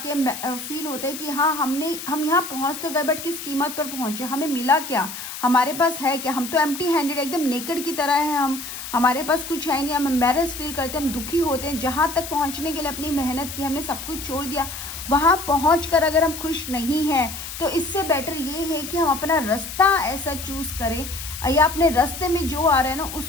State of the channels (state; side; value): noise; left; hiss, 9 dB below the sound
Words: फील होता है कि हाँ हम यहाँ पहुँच तो गए, बट किस कीमत पर पहुँचे, हमें मिला क्या, हमारे पास है क्या? हम तो एम्प्टी हैंडेड, एकदम नेकेड की तरह है, हमारे पास कुछ है नहीं, हम एम्बैरेस फील करते हैं, हम दुखी होते हैं। जहाँ तक पहुँचने के लिए अपनी मेहनत की, हमने सब कुछ छोड़ दिया, वहाँ पहुँचकर अगर हम खुश नहीं हैं तो इससे बेटर ये है कि हम अपना रास्ता ऐसा चूज़ करें या अपने रास्ते में जो आ रहा है ना